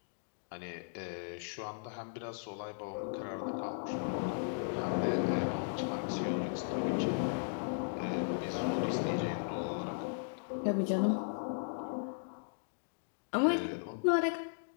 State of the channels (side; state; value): right; silent; digital silence